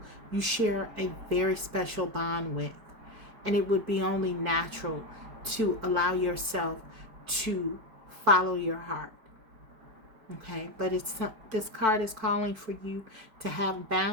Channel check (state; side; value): late; left; 4.5 ms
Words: you share a very special bond with. And it would be only natural to allow yourself to follow your heart. Okay, but this card is calling for you to have